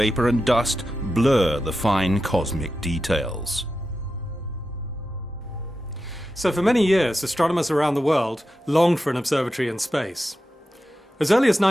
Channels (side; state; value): both; normal; correlation 0.90